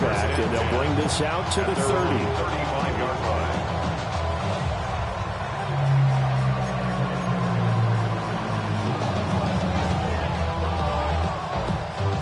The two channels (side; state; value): both; identical; correlation 1.00